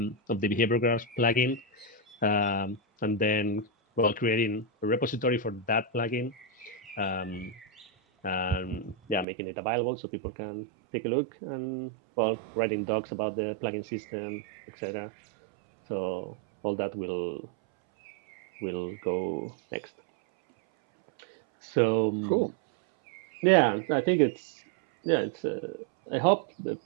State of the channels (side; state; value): left; drops out; at 9.2 s